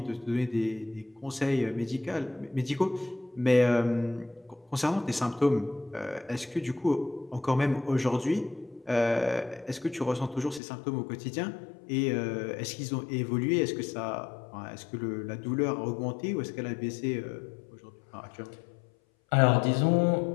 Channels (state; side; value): drops out; right; at 10.6 s